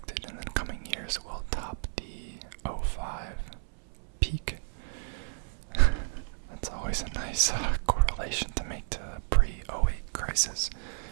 in the coming years will top the '05 peak. That's always a nice correlation to make to the pre-'08 crisis.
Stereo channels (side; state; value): left; silent; 56 dB below the other